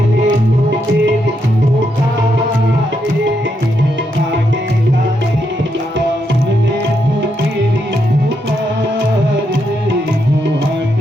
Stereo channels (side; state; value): both; normal; correlation 0.80